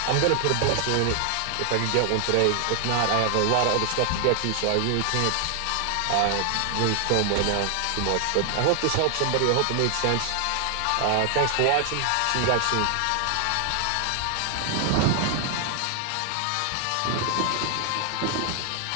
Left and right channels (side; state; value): both; different; correlation 0.00